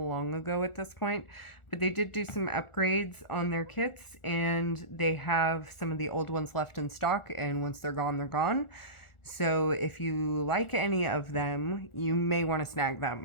ago at this point, but they did do some upgrades on their kits, and they have some of the old ones left in stock, and once they're gone, they're gone. So if you like any of them, you may want to snag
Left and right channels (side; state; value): right; late; 1.4 ms